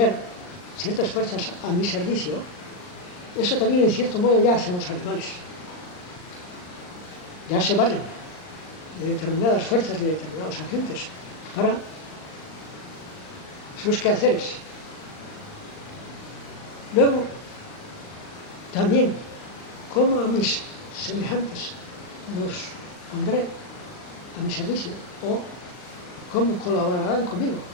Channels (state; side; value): late; right; 39 ms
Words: ciertas fuerzas a mi servicio, eso también en cierto modo ya hacen los animales. Ya se valen de determinadas fuerzas, de determinados agentes para sus quehaceres. Luego, también, cómo a mis semejantes los pondré a mi servicio o cómo colaborarán conmigo.